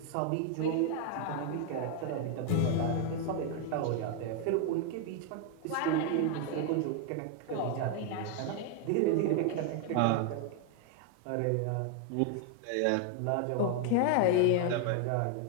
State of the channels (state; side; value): different; both; correlation 0.01